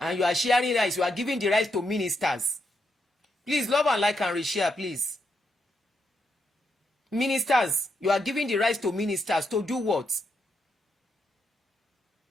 And you are sharing rice. You are giving the rice to ministers. Please, love and like and reshare, please. Ministers, you are giving the rice to ministers to do what?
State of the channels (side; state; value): both; normal; correlation 0.81